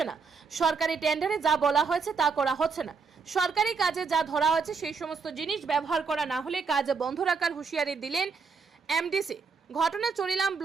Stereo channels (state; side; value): quieter; left; 5.2 dB